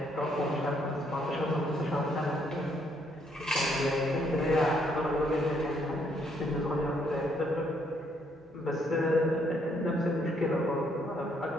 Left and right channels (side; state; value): both; normal; correlation 0.71